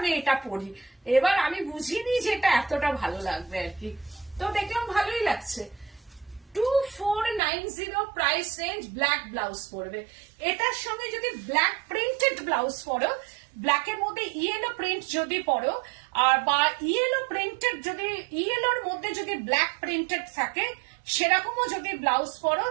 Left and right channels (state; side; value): drops out; left; at 7.4 s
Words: এটা পরি। এবার আমি বুঝিনি যে এটা এতটা ভালো লাগবে আর কি, তো দেখলাম ভালোই লাগছে। 2490 প্রাইস রেঞ্জ, ব্ল্যাক ব্লাউজ পরবে। এটার সঙ্গে যদি ব্ল্যাক প্রিন্টেড ব্লাউজ পরো, ব্ল্যাকের মধ্যে ইয়েলো প্রিন্ট যদি পরো, আর বা ইয়েলো প্রিন্টেড, যদি ইয়েলোর মধ্যে যদি ব্ল্যাক প্রিন্টেড থাকে, সেরকমও যদি ব্লাউজ পরো,